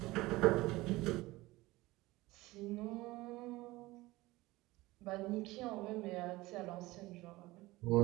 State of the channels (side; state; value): left; quieter; 19.7 dB